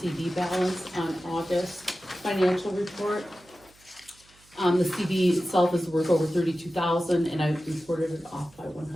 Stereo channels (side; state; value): right; noise; hum, 29 dB below the sound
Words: CD balance on August financial report. The CD itself is worth over $32,000 and I reported it off by